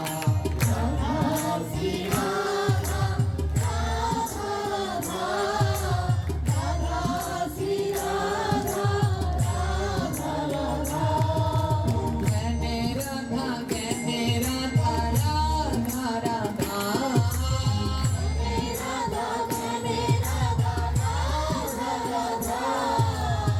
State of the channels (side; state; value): both; identical; correlation 1.00